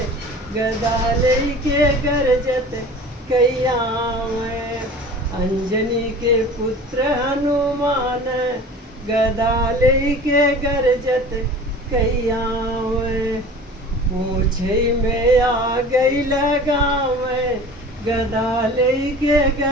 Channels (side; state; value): both; normal; correlation 0.40